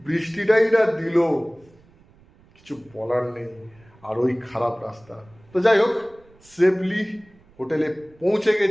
বৃষ্টিটাই না দিল, কিছু বলার নেই। আর ওই খারাপ রাস্তা। তো যাই হোক, সেফলি হোটেলে পৌঁছে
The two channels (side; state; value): right; noise; rumble, 29 dB below the sound